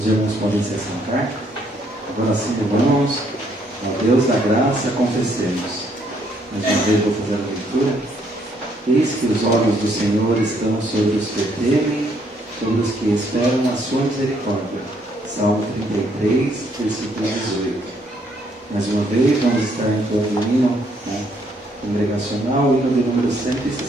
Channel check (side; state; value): both; normal; correlation 0.69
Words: irmãos podem se assentar. Agora sim, irmãos, ao Deus da graça, confessemos. Mais uma vez vou fazer a leitura. Eis que os olhos do Senhor estão sobre os que o temem, sobre os que esperam a sua misericórdia. Salmo 33, versículo 18. Mais uma vez, vamos estar entoando o hino congregacional, hino de número